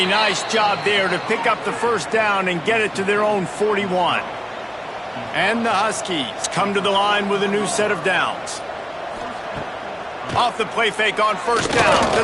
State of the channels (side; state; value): both; identical; correlation 1.00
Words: nice job there to pick up the first down and get it to their own 41. And the Huskies come to the line with a new set of downs. Off the play fake on first down to